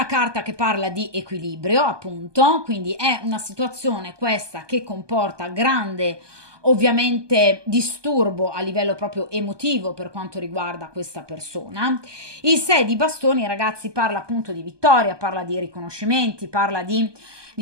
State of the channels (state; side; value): late; left; 1.2 ms